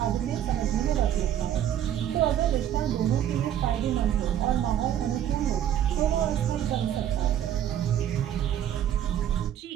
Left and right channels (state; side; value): quieter; left; 10.6 dB